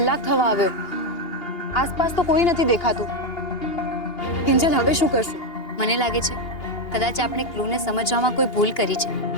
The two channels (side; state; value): right; late; 2.8 ms